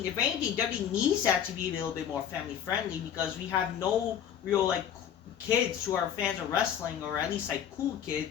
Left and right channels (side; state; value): right; quieter; 9.3 dB